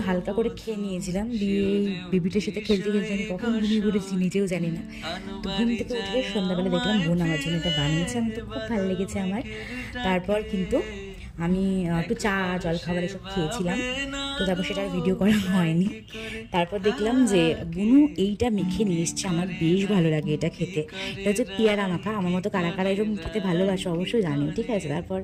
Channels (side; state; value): both; identical; correlation 1.00